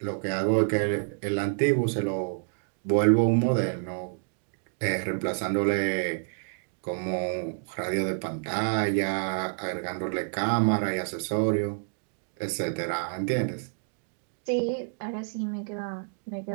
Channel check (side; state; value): left; silent; digital silence